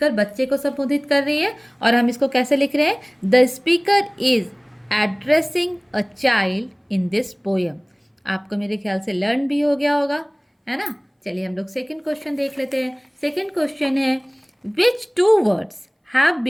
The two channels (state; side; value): identical; both; correlation 1.00